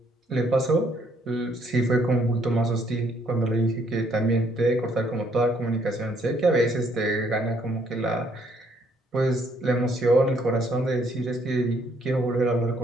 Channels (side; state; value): both; normal; correlation 0.67